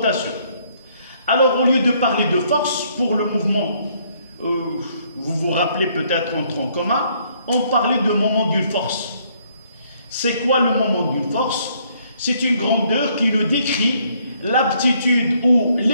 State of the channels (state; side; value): inverted; both; correlation -0.67